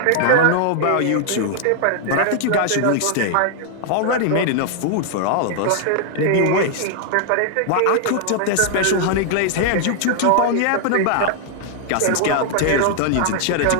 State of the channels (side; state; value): both; different; correlation 0.00